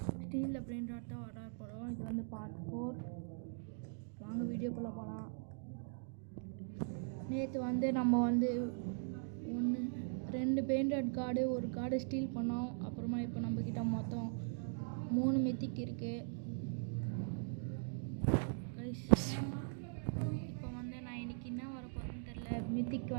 ஸ்டீலில் பிரெயின் ராட் தான் ஆர்டர் போகிறோம். இது பார்ட் 4. வாங்க வீடியோக்குள்ளே போகலாம். நேற்று நம்ம 2 பிரெயின் ராட் கார்டு, ஒரு கார்டு ஸ்டீல் பண்ணோம். அப்புறமா இப்போ நம்மக்கிட்ட மொத்தம் 3 மித்திக் இருக்குது கைஸ். இப்போ நான் இன்றைக்கி என்ன வரப்போகுதுன்னு தெரில.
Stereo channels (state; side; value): silent; left; digital silence